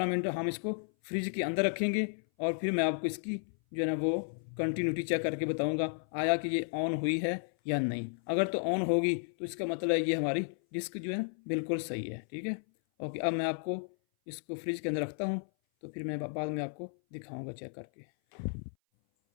मिनट हम इसको फ्रिज के अंदर रखेंगे और फिर मैं आपको इसकी जो है ना वो कंटिन्यूटी चेक करके बताऊंगा आया कि ये ऑन हुई है या नहीं। अगर तो ऑन होगी तो इसका मतलब है ये हमारी डिस्क जो है ना बिल्कुल सही है। ठीक है, ओके। अब मैं आपको इसको फ्रिज के अंदर रखता हूँ तो फिर मैं बाद में आपको दिखाऊंगा चेक करके।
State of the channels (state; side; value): silent; right; 56 dB below the other